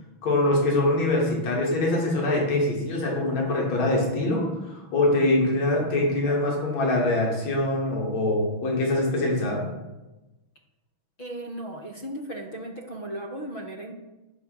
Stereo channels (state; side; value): late; right; 6.2 ms